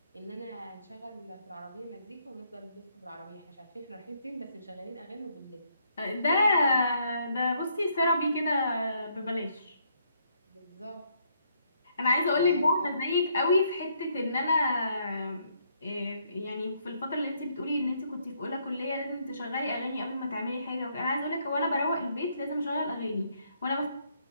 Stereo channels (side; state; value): both; inverted; correlation -0.71